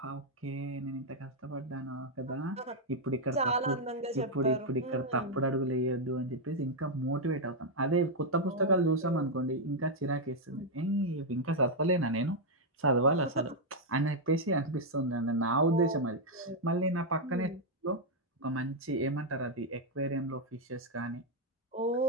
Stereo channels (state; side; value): normal; both; correlation -0.01